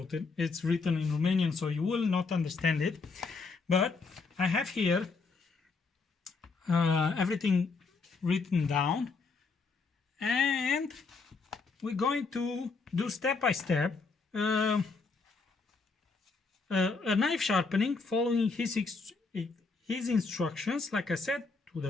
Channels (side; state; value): right; quieter; 4.4 dB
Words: written in Romanian, so you will not understand it. But I have here everything written down, and we're going to do step by step a knife sharpening following his instructions, like I said, to